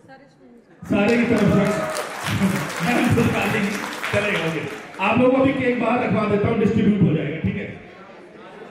सारे की तरफ से चलेगा, ओके। आप लोगों को भी केक बाहर रखवा देता हूँ, डिस्ट्रीब्यूट हो जाएगा, ठीक है?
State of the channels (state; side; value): identical; both; correlation 1.00